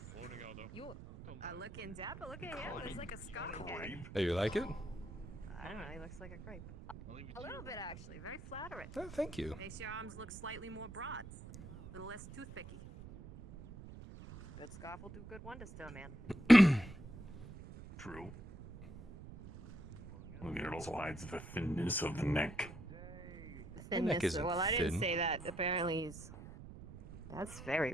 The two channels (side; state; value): right; noise; rumble, 14 dB below the sound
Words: You are looking dapper. Look at him. It's like a scarf. Grape. Hey, you like it? I don't know. He looks like a grape. A little bit, actually. Very flattering. Oh, thank you. Makes your arms look slightly more broad. A little less toothpicky. A good scarf will do good wonders to a man. True. I mean, it also hides the thinness of the neck. The neck isn't well, I didn't thin. say that. Apparently he's... That's very